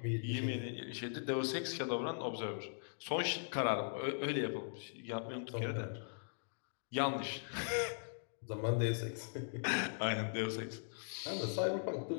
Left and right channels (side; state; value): right; silent; digital silence